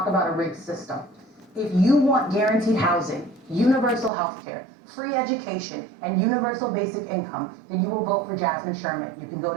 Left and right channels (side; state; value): left; drops out; at 4.1 s